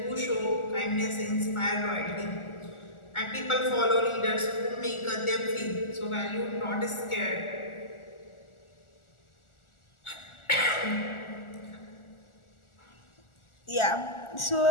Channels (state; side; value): late; right; 1.4 ms